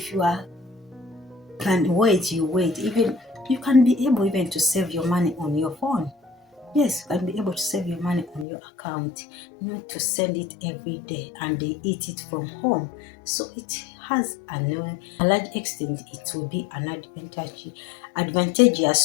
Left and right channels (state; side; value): drops out; right; at 8.5 s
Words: you can wait, you wait. Even you can be able even to save your money on your phone. Yes, you can be able to save your money on your account, not to send it every day and they eat it from home. So it has a large extent, it will be an